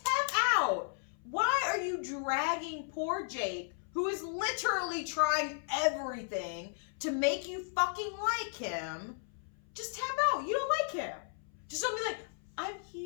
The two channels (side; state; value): right; silent; 55 dB below the other